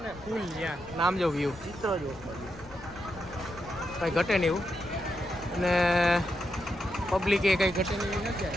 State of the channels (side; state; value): left; noise; rumble, 19 dB below the sound